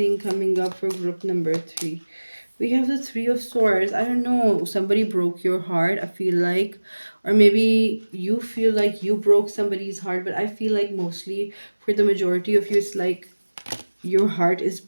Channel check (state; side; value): inverted; both; correlation -1.00